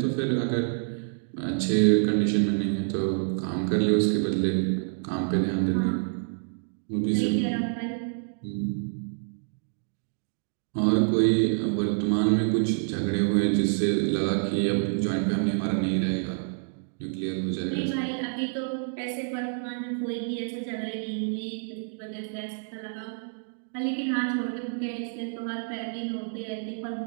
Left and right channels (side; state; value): left; silent; digital silence